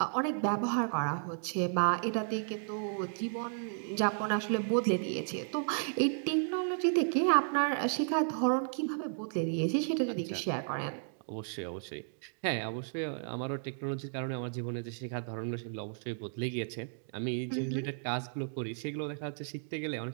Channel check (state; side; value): silent; left; digital silence